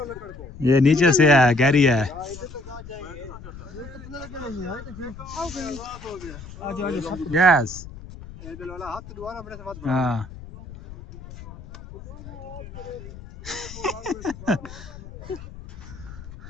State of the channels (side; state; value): left; noise; rumble, 15 dB below the sound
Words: लकड़ को। ये नीचे से है, गहरी है। इधर तक आ जाएंगे। आ जाओ यस इधर वाला हाथ दोबारा अपने से मत हाँ।